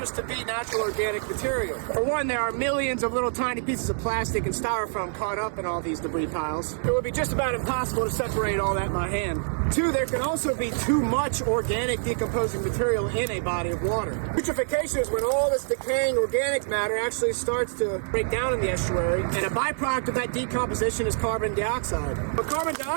to be natural organic material. For one, there are millions of little tiny pieces of plastic and styrofoam caught up in all these debris piles. It would be just about impossible to separate all that by hand. Two, there can also be too much organic decomposing material in a body of water. Eutrophication is when all this decaying organic matter actually starts to break down in the estuary, and a byproduct of that decomposition is carbon dioxide. When carbon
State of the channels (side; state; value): left; silent; digital silence